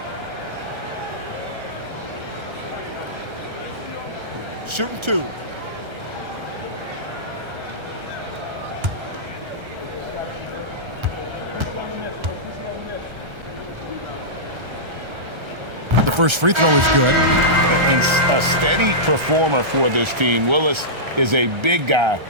Shooting 2. The first free throw is good. And a steady performer for this team. Willis is a big guy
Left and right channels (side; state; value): left; late; 1.3 ms